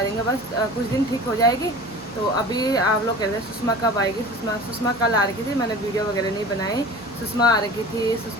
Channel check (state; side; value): normal; both; correlation 0.39